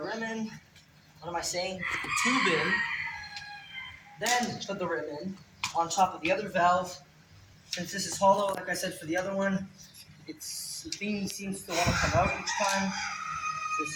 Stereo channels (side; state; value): both; identical; correlation 1.00